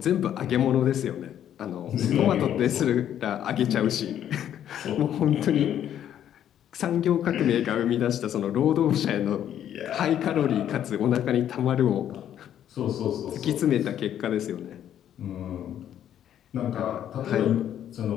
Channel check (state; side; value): quieter; right; 10.4 dB